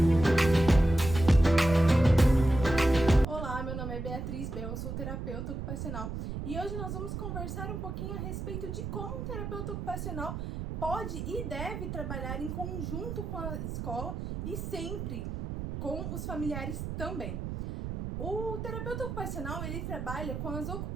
Olá, meu nome é Beatriz Bel, eu sou terapeuta ocupacional e hoje nós vamos conversar um pouquinho a respeito de como um terapeuta ocupacional pode e deve trabalhar em conjunto com a escola e sempre com os familiares também. O terapeuta ocupacional, ele trabalha com as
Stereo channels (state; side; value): noise; right; rumble, 5 dB below the sound